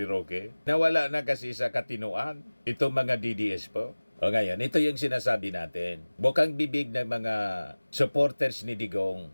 Roque. Nawala na kasi sa katinuan itong mga DDS po. O ngayon, ito yung sinasabi natin. Bukang bibig ng mga supporters ni Digong.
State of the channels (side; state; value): both; inverted; correlation -1.00